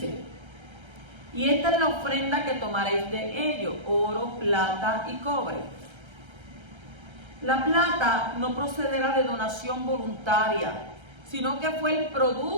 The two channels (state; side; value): late; left; 1.3 ms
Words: y esta es la ofrenda que tomaréis de ellos, oro, plata y cobre. La plata no procederá de donación voluntaria, sino que fue el